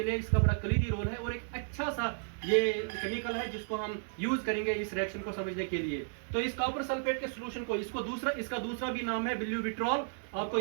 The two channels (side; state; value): left; silent; digital silence